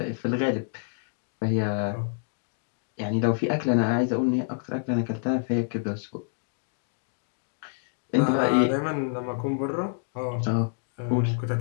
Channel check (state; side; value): silent; right; digital silence